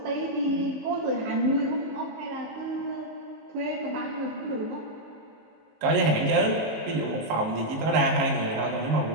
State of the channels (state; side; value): late; left; 19 ms